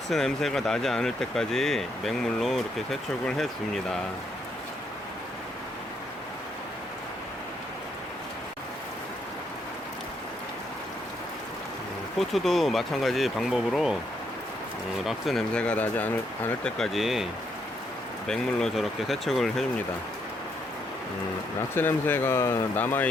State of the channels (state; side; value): normal; both; correlation 0.75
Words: 냄새가 나지 않을 때까지 맹물로 이렇게 세척을 해줍니다. 포트도 마찬가지 방법으로 락스 냄새가 나지 않을 때까지 맹물로 저렇게 세척을 해줍니다. 락스 냄새가